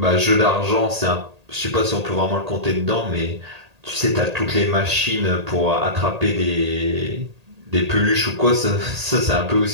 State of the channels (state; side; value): late; left; 1.8 ms